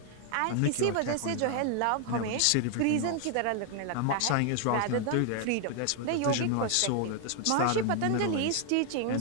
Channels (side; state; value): both; different; correlation 0.00